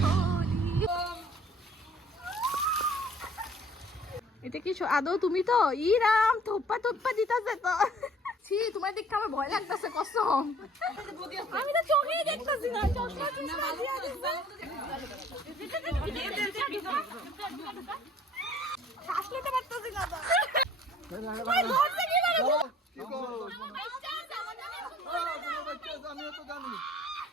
Holi. এটা কি আদৌ তুমি তো? ই রাম, থোপ্পা থোপ্পা দিতাছে তো। ছি, তোমার দেখতে আমার ভয় লাগতেছে কসম। আমি তো চোখেই দেখতেছি না। চশমা চশমা দিয়া দিছে। শ্বাস নিতে পারতেছি না তো। ভাই ধরতে কি পারো?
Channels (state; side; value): normal; both; correlation 0.55